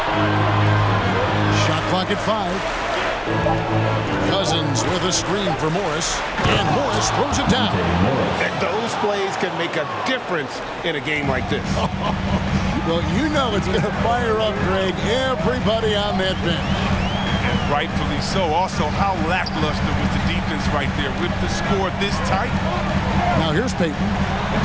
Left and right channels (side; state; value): both; identical; correlation 1.00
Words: Shot clock at 5. Cousins with a screen for Morris, and Morris throws it down. And those plays can make a difference in a game like this. Well, you know it's going to fire up, Greg, everybody on that bench. And rightfully so. Also, how lackluster was the defense right there with the score this tight? Now here's Payton,